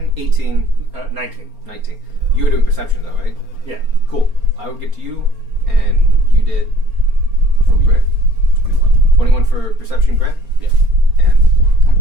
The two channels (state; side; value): late; left; 4.3 ms